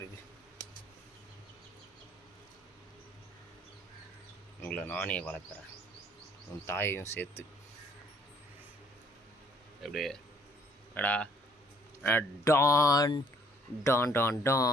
உங்களை நானே வளர்க்குறேன், உன் தாயையும் சேர்த்து. எப்படியே அடா டான் டான் டான்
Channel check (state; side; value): normal; both; correlation 0.62